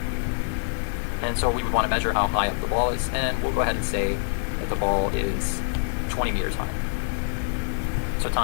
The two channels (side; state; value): right; silent; digital silence